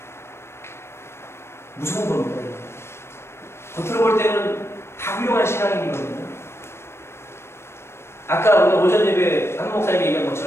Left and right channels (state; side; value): late; right; 0.12 ms